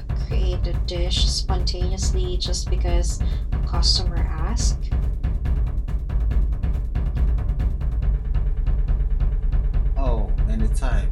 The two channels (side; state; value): both; identical; correlation 1.00